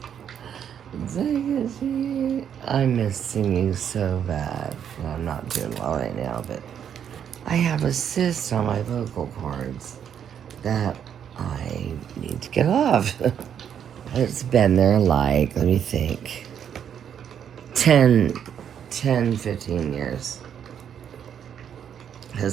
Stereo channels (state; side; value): quieter; left; 8.7 dB